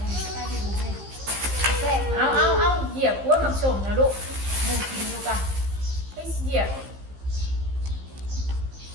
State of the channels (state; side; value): late; left; 15 ms